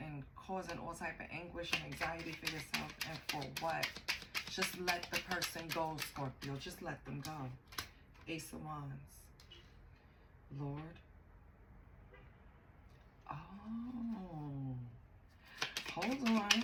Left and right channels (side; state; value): both; identical; correlation 1.00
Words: causing all type of anguish and anxiety for yourself. And for what? Just let the person go, Scorpio. Just let them go. Ace of Wands. Lord. Oh. Hold on.